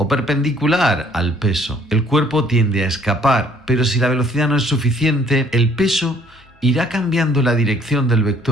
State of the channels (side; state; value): both; normal; correlation 0.60